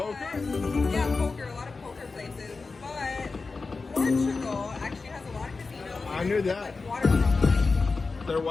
Yeah, poker. A lot of poker places, but Portugal actually has a lot of casinos. I knew that. Like waterfront. They're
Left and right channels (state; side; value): quieter; right; 4.1 dB